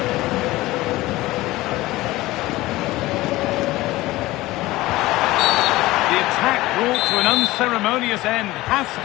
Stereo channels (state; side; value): quieter; right; 18.3 dB